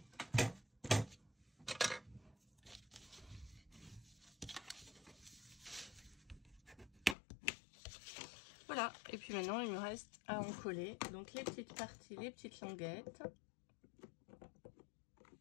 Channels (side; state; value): right; drops out; at 7.2 s